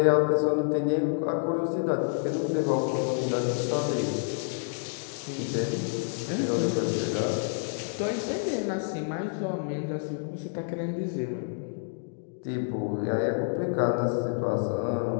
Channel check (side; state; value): right; silent; digital silence